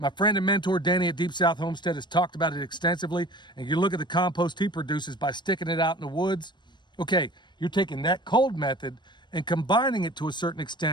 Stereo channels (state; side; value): late; right; 0.22 ms